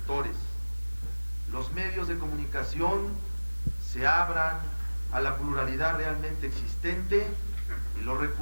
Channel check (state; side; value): inverted; both; correlation -1.00